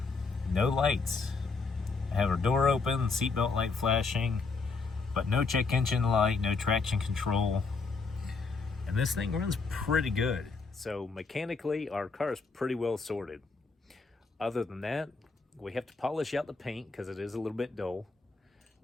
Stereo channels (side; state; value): right; quieter; 4.3 dB